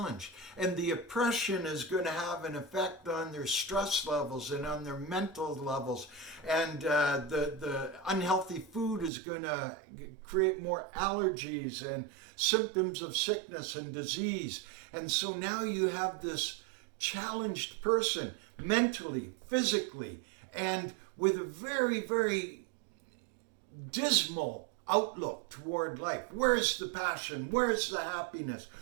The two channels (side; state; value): left; drops out; at 9.1 s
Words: and the oppression is going to have an effect on their stress levels and on their mental levels, and the unhealthy food is going to create more allergies and symptoms of sickness and disease. And so now you have this challenged person mentally, physically, and with a very, very dismal outlook toward life. Where's the passion? Where's the happiness?